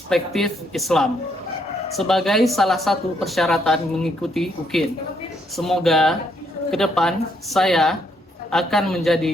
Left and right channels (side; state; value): both; normal; correlation 0.72